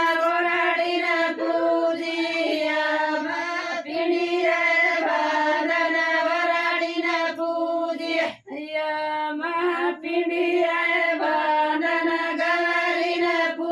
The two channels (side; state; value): both; identical; correlation 1.00